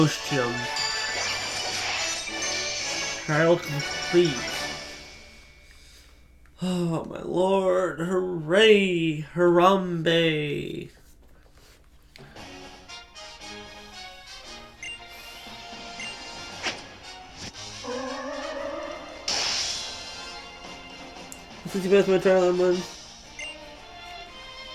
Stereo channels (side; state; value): both; identical; correlation 1.00